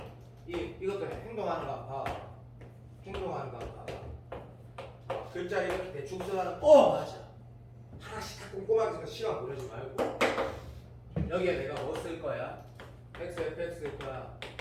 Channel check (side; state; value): both; identical; correlation 1.00